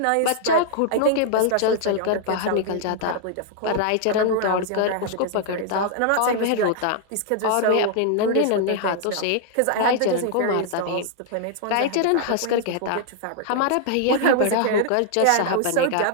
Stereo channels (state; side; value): different; both; correlation -0.01